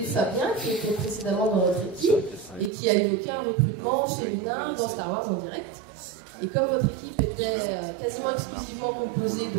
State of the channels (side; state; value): left; drops out; at 2.7 s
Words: Fabien, qui était précédemment dans notre équipe, et qui a eu aucun recrutement féminin dans Star Wars en direct. Et comme votre équipe était quasiment exclusivement composée